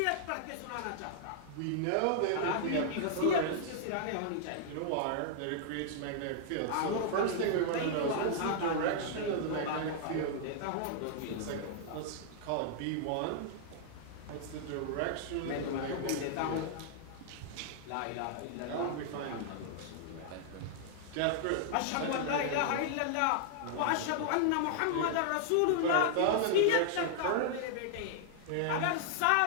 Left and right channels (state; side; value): different; both; correlation -0.01